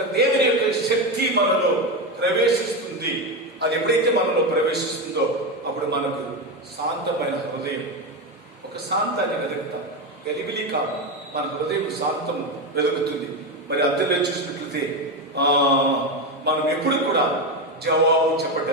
దేవుని యొక్క శక్తి మనలో ప్రవేశిస్తుంది. అది ఎప్పుడైతే మనలో ప్రవేశిస్తుందో అప్పుడు మనకు శాంతమైన హృదయం, ఒక శాంతాన్ని వెతుకుతాం. గలిబిలి కాదు, మన హృదయం శాంతము వెతుకుతుంది. మరి అందులో చూసినట్లయితే మనం ఎప్పుడు కూడా జవాబు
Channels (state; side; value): normal; both; correlation 0.14